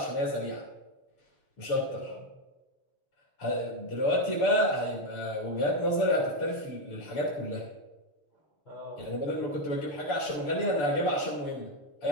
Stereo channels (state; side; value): late; right; 6.9 ms